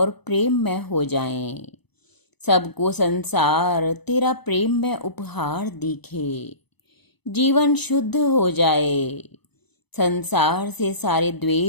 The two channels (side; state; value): right; late; 0.99 ms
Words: प्रेम में हो जाएं। सबको संसार तेरा प्रेम में उपहार दिखे, जीवन शुद्ध हो जाए, संसार से सारे